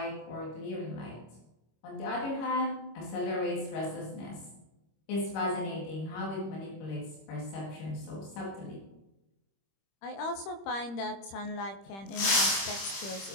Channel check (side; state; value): right; late; 26 ms